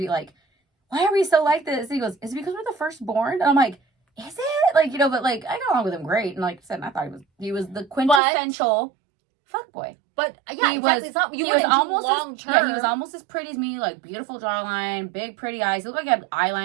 like, "Why are we so like this?" And he goes, "Is it because we're the firstborn?" And I'm like, "Is it?" Like, you know, but like I got along with him great, and like I said, I thought he was the quintessential fuckboy. But yeah, He exactly. was- It's not, you he was wouldn't do almost long as, term. yeah, he was almost as pretty as me, like beautiful jawline, big pretty eyes. He looked like he had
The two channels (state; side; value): drops out; left; at 8.2 s